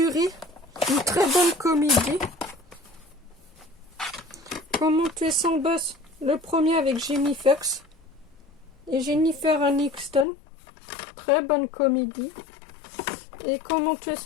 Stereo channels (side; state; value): right; drops out; at 10.2 s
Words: une très bonne comédie. Comment tuer son boss, le premier avec Jamie Foxx et Jennifer Aniston. Très bonne comédie. Et Comment tuer